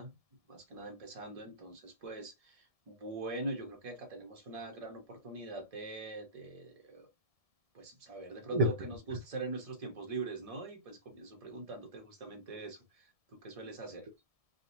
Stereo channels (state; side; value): late; left; 1.7 ms